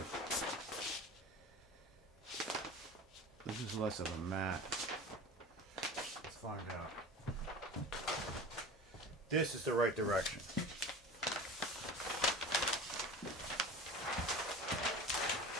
is less of a mat. Let's find out. This is the right direction.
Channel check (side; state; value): both; normal; correlation 0.35